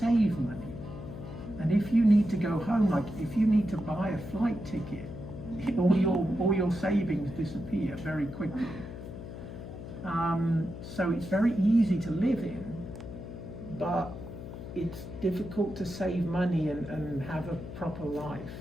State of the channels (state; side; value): noise; left; hum, 10 dB below the sound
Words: money. And if you need to go home, like if you need to buy a flight ticket, all your savings disappear very quickly. So it's very easy to live in, but it's difficult to save money and have a proper life.